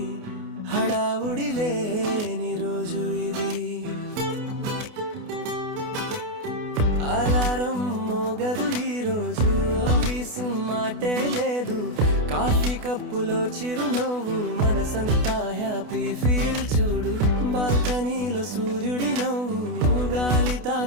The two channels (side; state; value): left; late; 28 ms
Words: హడావుడి లేని రోజు ఇది. అలారం మోగదు ఈ రోజు, ఆఫీసు మాటే లేదు. కాఫీ కప్పులో చిరునవ్వు, మనసంతా హ్యాపీ ఫీల్ చూడు. బాల్కనీలో సూర్యుడి నవ్వు, గాలి